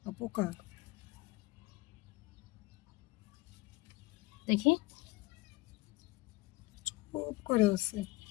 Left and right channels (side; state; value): right; quieter; 20.9 dB